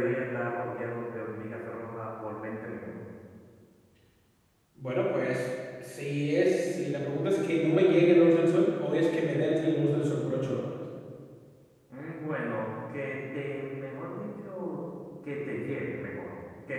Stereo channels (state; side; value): identical; both; correlation 1.00